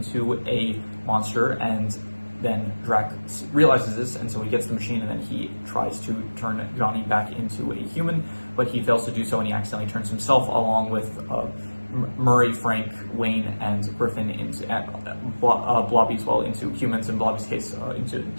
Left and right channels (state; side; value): inverted; both; correlation -1.00